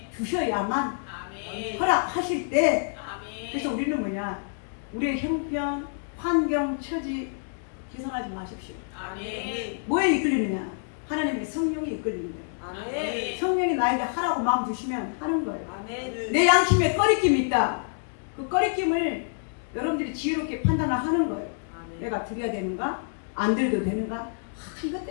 주셔야만 허락하실 때. 그래서 우리는 뭐냐, 우리의 형편 환경 처지 계산하지 마십시오. 뭐에 이끌리느냐? 하나님의 성령이 이끌리는 거예요. 성령이 나에게 하라고 마음 주시면 하는 거예요. 내 양심에 꺼리낌이 있다. 그 꺼리낌을 여러분들이 지혜롭게 판단을 하는 거예요. 내가 드려야 되는가? 안 드려도 되는가? 이것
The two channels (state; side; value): silent; right; digital silence